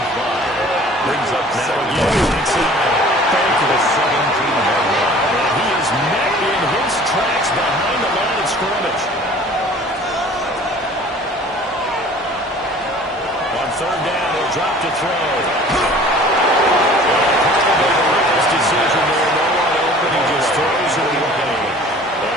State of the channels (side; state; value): both; normal; correlation 0.48